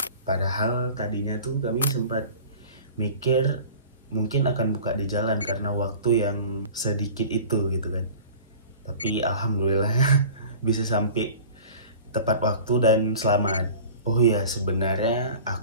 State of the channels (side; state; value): both; inverted; correlation -0.41